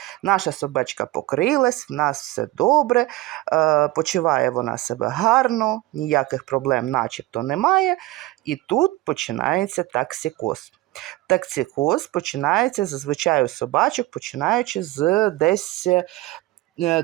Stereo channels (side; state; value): left; quieter; 18.2 dB